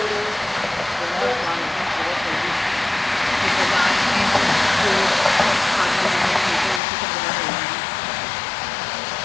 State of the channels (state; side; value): drops out; right; at 6.8 s